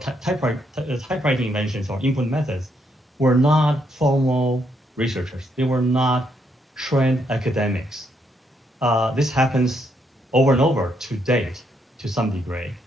inventions or input methods, were not formal researchers. They were not trained academics. This happens over and over to date, to some degree.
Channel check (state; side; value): normal; both; correlation 0.75